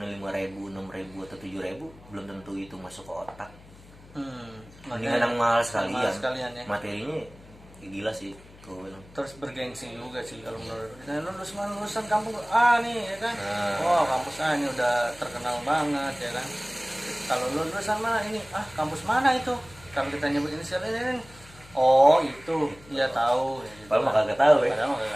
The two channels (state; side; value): noise; left; hum, 22 dB below the sound